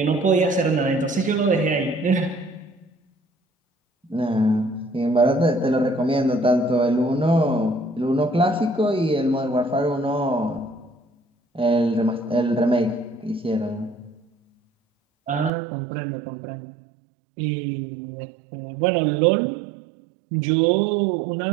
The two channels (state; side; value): drops out; left; at 15.5 s